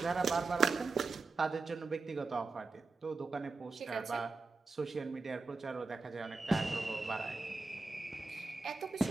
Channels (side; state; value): left; quieter; 3.9 dB